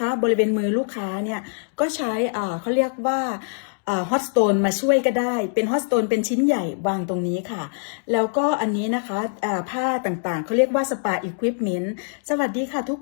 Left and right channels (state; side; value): silent; right; digital silence